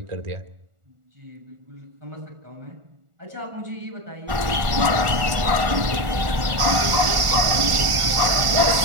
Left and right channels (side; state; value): left; late; 1.4 ms